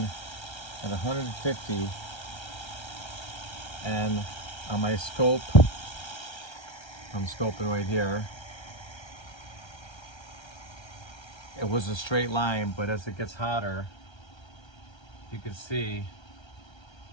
at 150, and on my scope, I'm scoping right here. It was a straight line, but as it gets hotter, you can see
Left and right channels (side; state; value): right; late; 1.3 ms